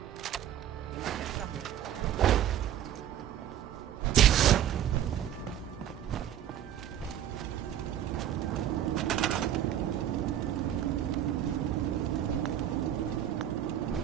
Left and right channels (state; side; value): quieter; left; 10.9 dB